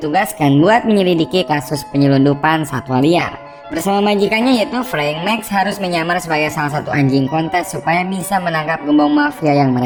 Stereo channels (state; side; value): identical; both; correlation 1.00